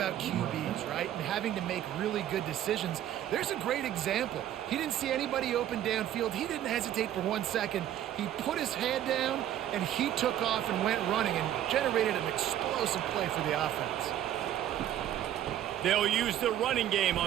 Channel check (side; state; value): left; quieter; 11.6 dB